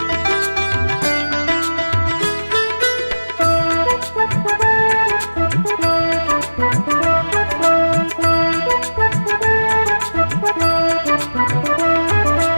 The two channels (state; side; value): inverted; both; correlation -1.00